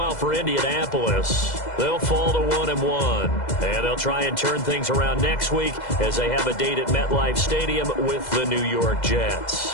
for Indianapolis, they'll fall to 1-1. And they'll try and turn things around next week as they have a date at MetLife Stadium with the New York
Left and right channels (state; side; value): late; right; 2.0 ms